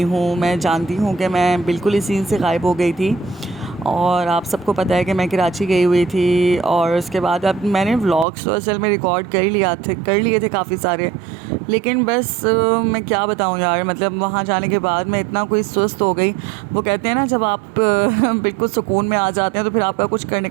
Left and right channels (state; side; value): drops out; left; at 8.2 s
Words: हूँ। मैं जानती हूँ कि मैं बिल्कुल इस सीन से गायब हो गई थी और आप सबको पता है कि मैं कराची गई हुई थी। और उसके बाद अब मैंने व्लॉग्स तो असल में रिकॉर्ड कर लिए थे काफ़ी सारे, लेकिन बस मैं क्या बताऊँ यार, मतलब वहाँ जाने के बाद मैं इतना कोई सुस्त हो गई। वो कहते हैं ना, जब आप बिल्कुल सुकून में आ जाते हैं तो फिर आपका कुछ करने